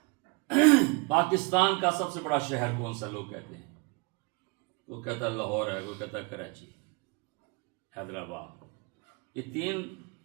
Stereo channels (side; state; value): left; quieter; 30.0 dB